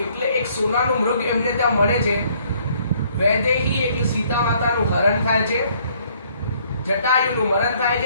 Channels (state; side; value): inverted; both; correlation -0.64